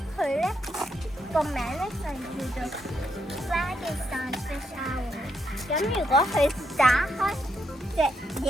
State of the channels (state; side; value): normal; both; correlation 0.79